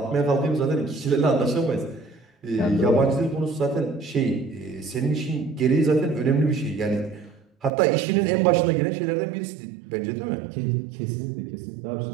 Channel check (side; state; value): left; drops out; at 7.7 s